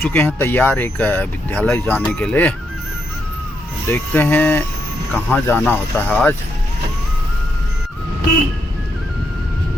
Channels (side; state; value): both; normal; correlation 0.80